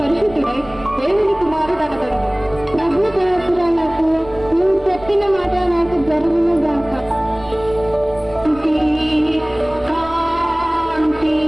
దేవుని కుమారుడు అనగలడు. ప్రభు దాసురాలకు నువ్వు చెప్పిన మాట నాకు జరుగును గాక.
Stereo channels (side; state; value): right; noise; rumble, 19 dB below the sound